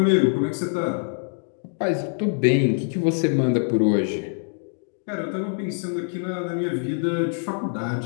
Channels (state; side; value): silent; right; 62 dB below the other